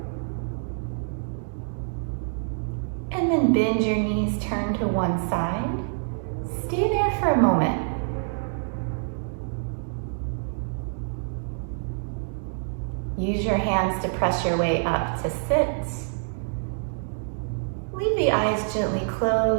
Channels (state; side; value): silent; left; digital silence